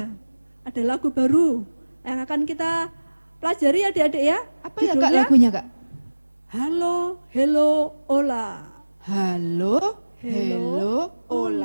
Ada lagu baru yang akan kita pelajari adik-adik ya. Apa ya Kak Judulnya, lagunya Kak? Halo, hello, ola. Halo, hello,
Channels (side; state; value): both; inverted; correlation -1.00